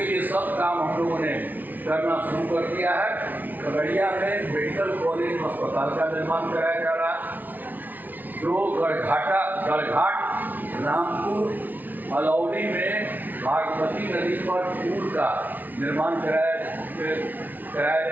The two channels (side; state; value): left; late; 0.082 ms